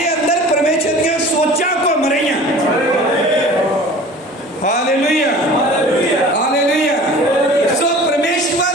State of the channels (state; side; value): normal; both; correlation 0.43